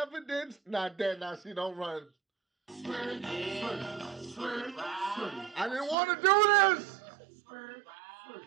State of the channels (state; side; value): drops out; left; at 6.0 s